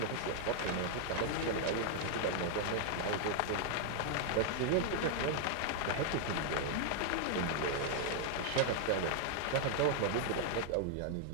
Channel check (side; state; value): both; different; correlation 0.00